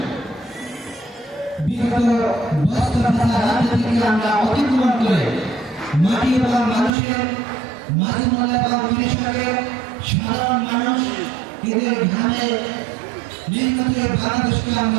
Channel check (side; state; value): left; drops out; at 6.9 s